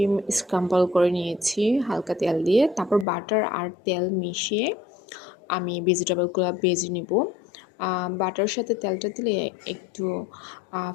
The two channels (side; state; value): right; drops out; at 3.1 s